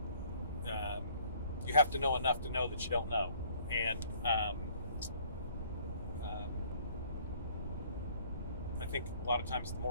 you have to know enough to know that you don't know, and I think a lot of times the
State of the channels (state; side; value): inverted; both; correlation -0.59